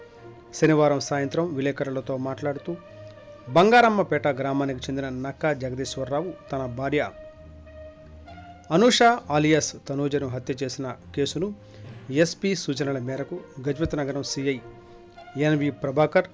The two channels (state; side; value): identical; both; correlation 1.00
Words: శనివారం సాయంత్రం విలేకరులతో మాట్లాడుతూ బంగారమ్మపేట గ్రామానికి చెందిన నక్కా జగదీశ్వరరావు తన భార్య అనూష ఆలియాస్ తనూజను హత్య చేసిన కేసును ఎస్పీ సూచనల మేరకు Gajapathinagaram CI NV Prabhakar,